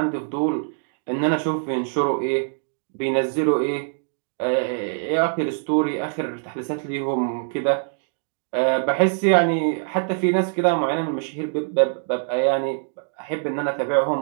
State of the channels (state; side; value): silent; left; digital silence